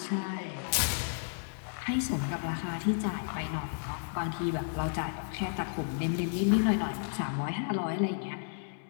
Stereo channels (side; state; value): right; silent; digital silence